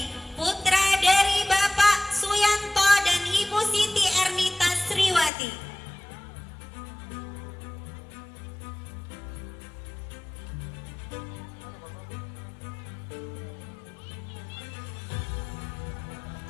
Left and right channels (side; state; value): right; drops out; at 5.3 s